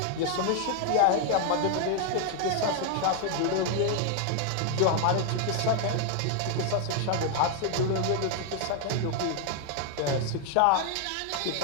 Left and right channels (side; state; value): both; different; correlation 0.00